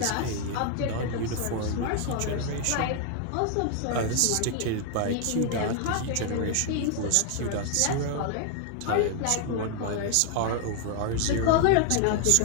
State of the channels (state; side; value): different; both; correlation 0.00